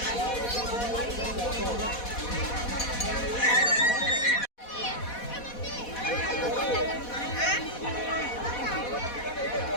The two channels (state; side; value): late; right; 4.1 ms